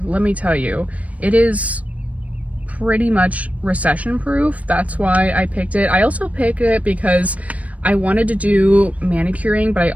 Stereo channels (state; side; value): late; left; 0.068 ms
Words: Let me tell you, it is pretty much recession proof. That's why I picked it. I also picked it because I wanted to do manicuring, but I